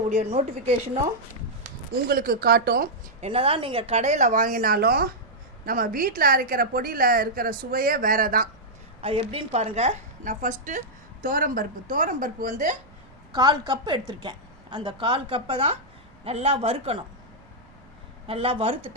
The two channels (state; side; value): noise; right; rumble, 27 dB below the sound